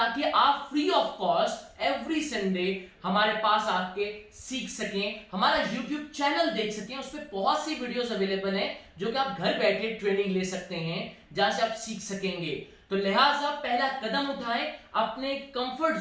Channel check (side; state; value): both; identical; correlation 1.00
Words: आप free of cost every Sunday हमारे पास आके सीख सकें, हमारा YouTube चैनल देख सकें। उस पर बहुत सी वीडियोस अवेलेबल हैं जो कि आप घर बैठे ट्रेनिंग ले सकते हैं, जहां से आप सीख सकेंगे। तो लिहाजा पहला कदम उठाएं, अपने कंफर्ट